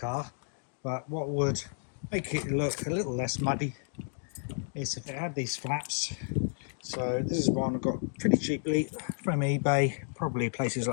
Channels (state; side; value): silent; right; digital silence